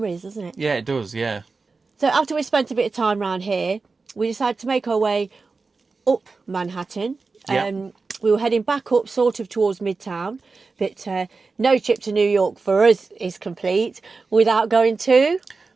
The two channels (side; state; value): left; quieter; 4.2 dB